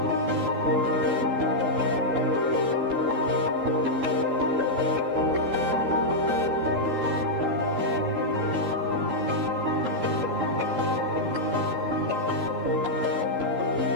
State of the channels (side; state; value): left; late; 3.8 ms